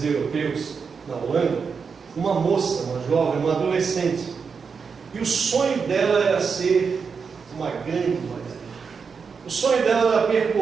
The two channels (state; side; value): quieter; left; 5.6 dB